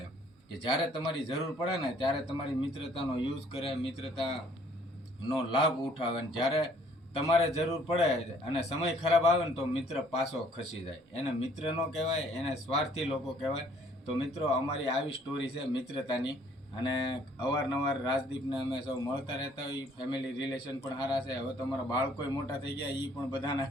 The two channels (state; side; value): normal; both; correlation 0.61